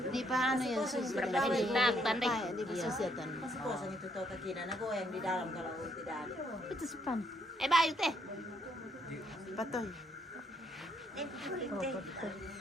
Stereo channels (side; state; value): both; normal; correlation 0.71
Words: Di paano yan susunod? Tandai. Di susunod. Kosong itu tahu kekina, nago yang di dalam kalau tidak ada. Itu sepan. Bayo teh. Patoy.